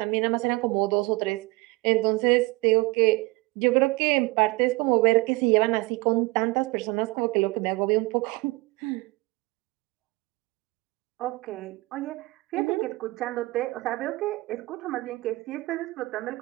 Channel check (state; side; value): quieter; left; 23.1 dB